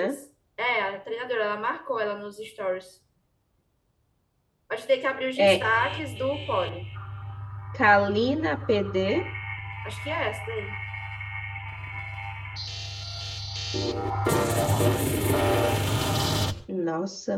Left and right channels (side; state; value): both; identical; correlation 1.00